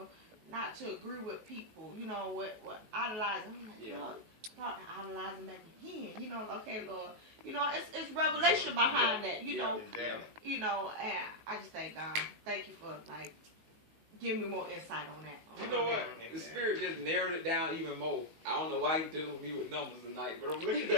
not to agree with people, you know, what idolizing. I'm like, Lord, start idolizing back again, you know, okay, Lord, you know, it's revelation behind that, you know, you know, and I just thank God, thank you for like giving me more insight on that. You know what? The Spirit just narrowed it down even more. I don't know why He dealing with me with numbers tonight, but I'm looking at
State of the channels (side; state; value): left; late; 19 ms